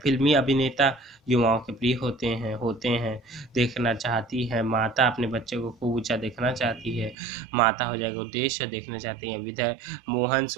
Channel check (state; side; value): drops out; left; at 7.2 s